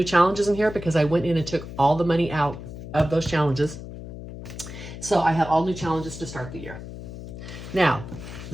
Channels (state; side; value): noise; left; hum, 11 dB below the sound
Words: challenges in here because I went in and took all the money out of those challenges. So I have all new challenges to start the year. Now,